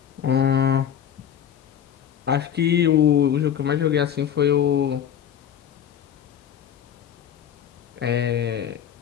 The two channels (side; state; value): right; quieter; 9.3 dB